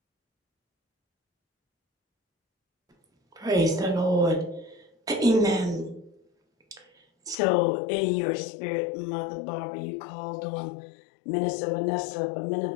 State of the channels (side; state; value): right; drops out; at 7.4 s